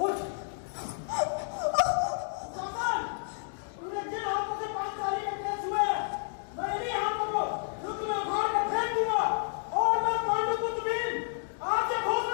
उठ! तूने जिन हाथों से पांचाली के पेश हुए हैं, मैं इन्हीं हाथों को तुम्हें उखाड़ कर फेंक दूंगा। और मैं पांडुपुत्र भीम आज से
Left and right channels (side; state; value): right; silent; digital silence